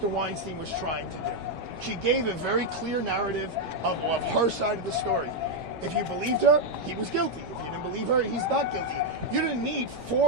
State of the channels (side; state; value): left; late; 5.3 ms